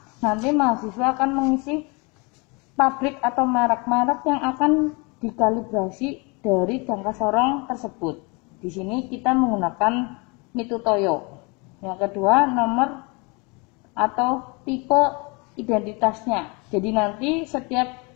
nanti mahasiswa akan mengisi pabrik atau merek-merek yang akan dikalibrasi dari jangka sorong tersebut. Di sini kita menggunakan Mitutoyo. Yang kedua, nomor atau tipe identitasnya. Jadi nanti setiap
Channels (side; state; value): right; quieter; 29.5 dB